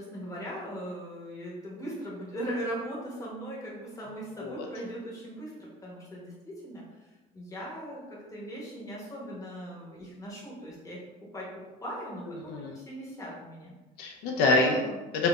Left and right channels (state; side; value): normal; both; correlation 0.28